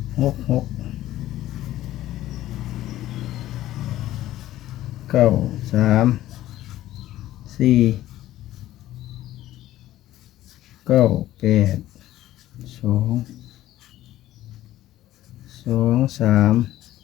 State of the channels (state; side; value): quieter; right; 14.4 dB